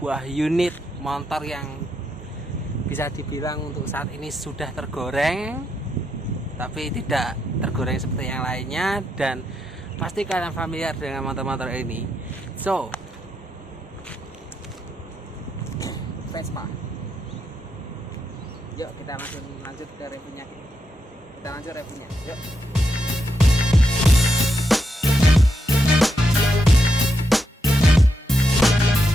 unit motor yang bisa dibilang untuk saat ini sudah tergoreng, tapi tidak tergoreng seperti yang lainnya, dan pasti kalian familiar dengan motor-motor ini. So, Vespa. Yuk kita langsung lanjut ke reviewnya. Kita lanjut reviewnya. Yuk.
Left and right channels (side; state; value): both; normal; correlation 0.82